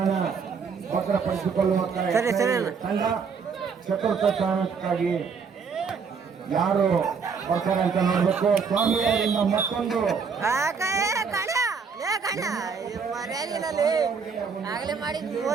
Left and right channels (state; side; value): quieter; left; 5.7 dB